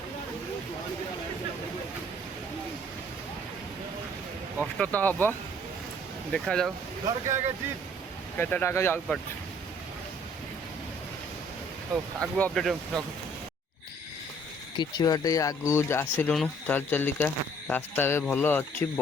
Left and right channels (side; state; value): both; normal; correlation 0.59